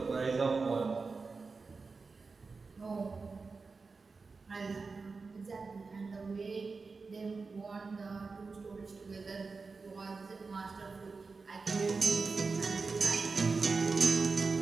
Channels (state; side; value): quieter; left; 4.3 dB